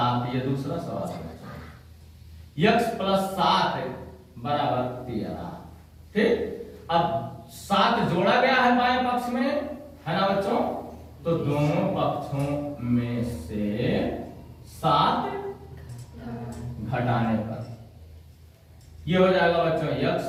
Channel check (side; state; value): both; identical; correlation 1.00